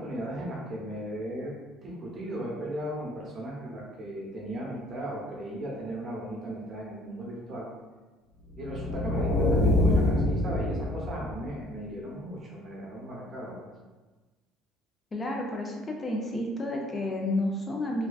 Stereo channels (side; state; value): both; normal; correlation 0.59